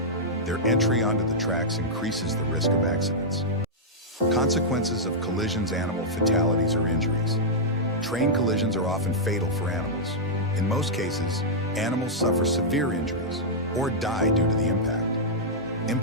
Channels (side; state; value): both; normal; correlation -0.09